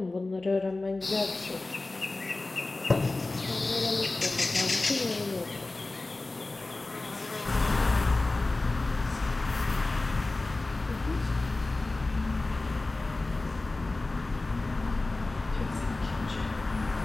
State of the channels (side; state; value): right; quieter; 3.1 dB